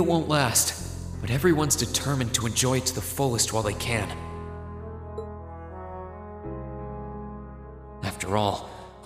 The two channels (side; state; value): both; identical; correlation 1.00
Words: won't last, but everyone's determined to enjoy it to the fullest while they can. After all,